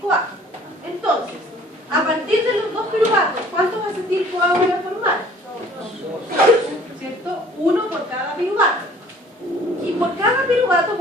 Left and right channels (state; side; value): normal; both; correlation 0.53